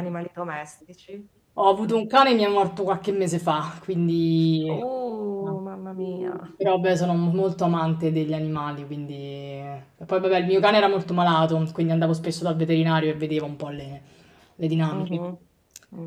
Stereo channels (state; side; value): identical; both; correlation 1.00